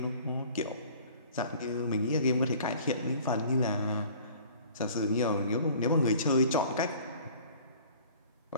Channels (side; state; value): both; inverted; correlation -0.49